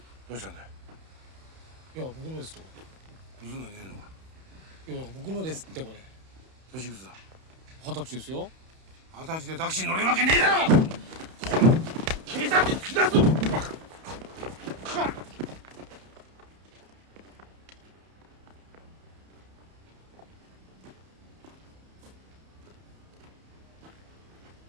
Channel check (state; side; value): late; left; 31 ms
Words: どうしたんだよ。いや僕のですと。盗んだんじゃねえのか。いや僕のですってこれ。年いくつだ。20歳ですよ。20歳でタクシー乗れるわけねえだろ。警察に突き出すぞ。